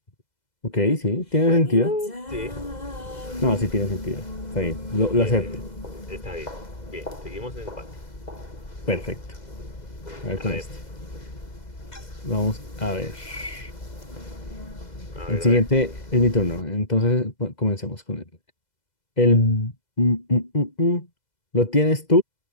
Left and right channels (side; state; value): right; late; 2.0 ms